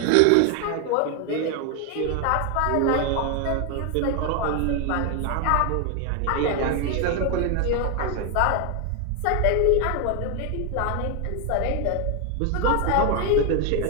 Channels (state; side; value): different; both; correlation 0.01